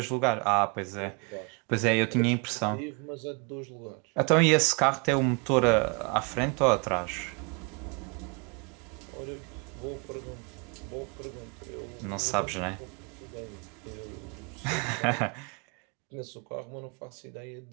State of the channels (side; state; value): left; quieter; 33.2 dB